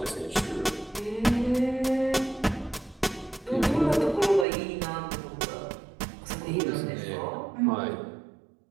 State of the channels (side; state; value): left; drops out; at 4.5 s